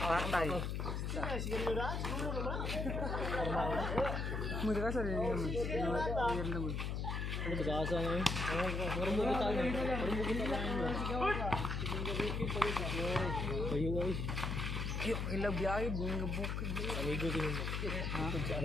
tayo. Muna ka sa rin naman. Player naman. Ano ba kasa ngayon? Meron mo kita na. Meron mo kita na. Ayo ay. Yo, ilang biyahe, bunga bukid. Amigo din mo. Sa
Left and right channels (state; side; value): noise; left; hum, 1 dB below the sound